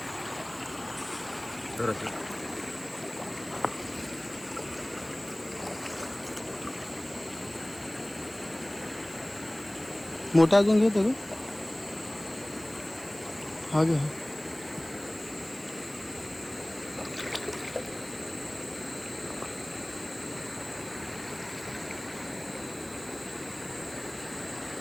मोठा अजून घेतो हा घे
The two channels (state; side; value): noise; right; hiss, 18 dB below the sound